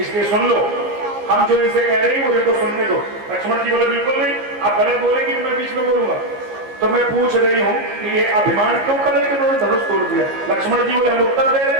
सुन लो। हम जो इनसे कह रहे हैं वो इनको सुनने दो। लक्ष्मण जी बोले, बिल्कुल नहीं, आप गलत बोलेंगे कि मैं बीच में बोलूंगा। तो मैं पूछ रही हूँ कि ये अभिमान क्यों कर रहे कि उन्होंने धनुष तोड़ दिया? लक्ष्मण जी बोले, हम उत्तर दे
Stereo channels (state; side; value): late; left; 15 ms